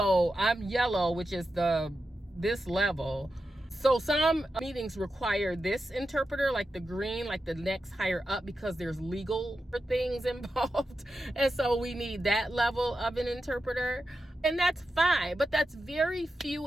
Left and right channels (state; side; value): normal; both; correlation 0.90